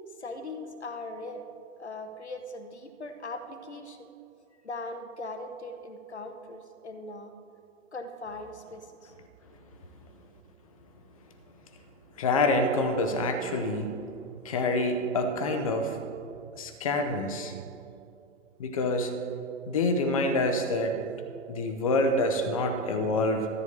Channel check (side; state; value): both; normal; correlation 0.14